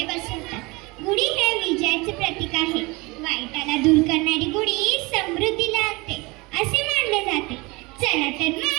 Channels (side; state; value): left; quieter; 24.7 dB